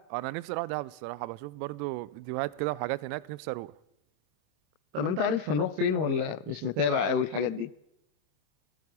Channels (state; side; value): late; left; 26 ms